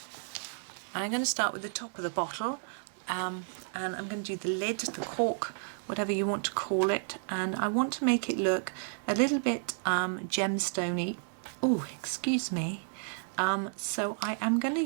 I'm going to start with the top of the bottle, and I'm going to do the lid, the cork, whatever you want to call it, and I want to make it look a little bit gemstone-y. Oh, excuse me. So I am going to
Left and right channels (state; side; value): silent; left; digital silence